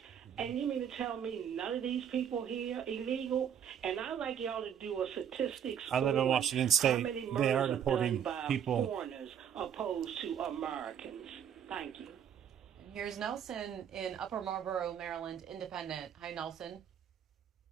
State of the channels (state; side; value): quieter; left; 8.7 dB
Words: and you mean to tell me none of these people here illegal? And I'd like y'all to do a statistics. I live in Washington State. They are deporting people. Foreigners opposed to Americans. Thank you. And here's Nelson in Upper Marlboro, Maryland, Independent. Hi, Nelson.